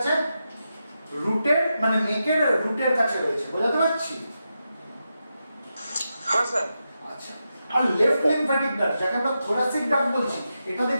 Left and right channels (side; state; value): both; inverted; correlation -0.88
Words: রুটের মানে নেকের রুটের কাছে রয়েছে। বোঝাতে পারছি? হ্যাঁ স্যার। আচ্ছা, আর লেফট লিম্ফ্যাটিক ডাক্ট যাকে আমরা থোরাসিক ডাক্ট বলছি, এটা